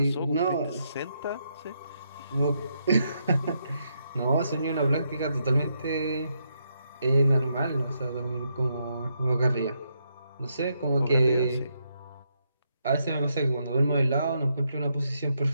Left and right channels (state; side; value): inverted; both; correlation -0.79